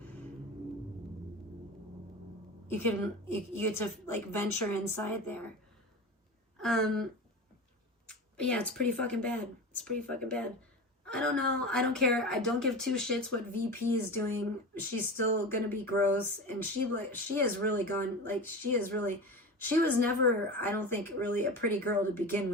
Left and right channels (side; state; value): both; normal; correlation 0.28